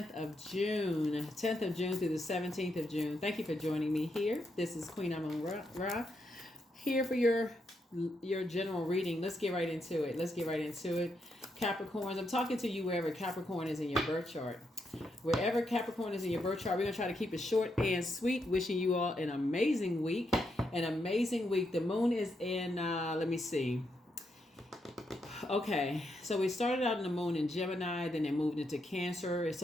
of June. 10th of June through the 17th of June. Thank you for joining me here. This is Queen Amun Ra here for your general reading. Let's get right into it. Capricorns, I'm talking to you wherever Capricorn is in your birth chart. Wherever Capricorn is in your birth chart, we're going to try to keep it short and sweet. Wishing you all an amazing week. The moon is in, let me see. Okay, so we started out in the moon in Gemini, then it moved into Cancer.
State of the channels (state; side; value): normal; both; correlation 0.81